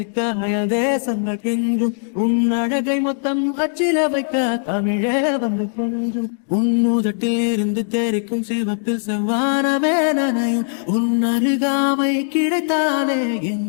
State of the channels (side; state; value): right; silent; digital silence